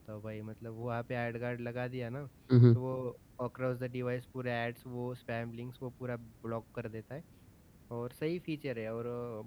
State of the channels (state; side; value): identical; both; correlation 1.00